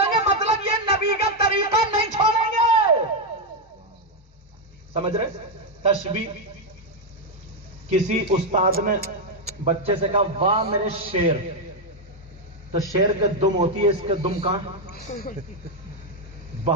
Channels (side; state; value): both; normal; correlation 0.03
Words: گے مطلب یہ نبی کا طریقہ نہیں چھوڑیں گے. سمجھ رہے؟ تشبیہ. کسی استاد نے بچے سے کہا واہ میرے شیر، تو شیر کے دم ہوتی ہے، اس کے دم کہاں؟